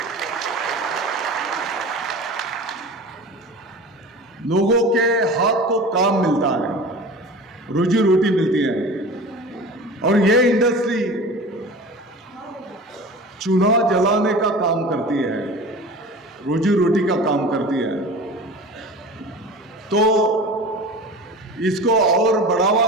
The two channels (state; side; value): normal; both; correlation 0.36